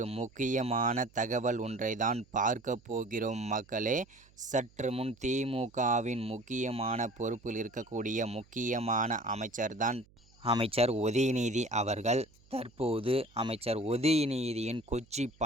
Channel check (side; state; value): right; noise; hum, 29 dB below the sound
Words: முக்கியமான தகவல் ஒன்றை தான் பார்க்க போகிறோம் மக்களே. சற்று முன் திமுகவின் முக்கியமான பொறுப்பில் இருக்கக்கூடிய முக்கியமான அமைச்சர் உதயநிதி அவர்கள் தற்போது அமைச்சர் உதயநிதியின் கொச்சி